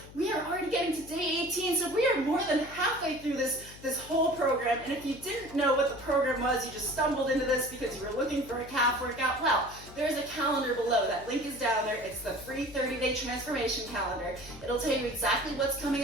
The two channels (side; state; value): left; noise; hum, 18 dB below the sound